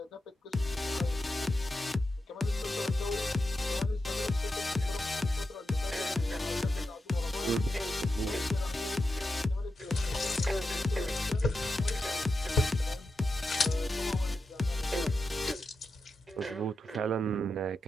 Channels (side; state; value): both; normal; correlation 0.88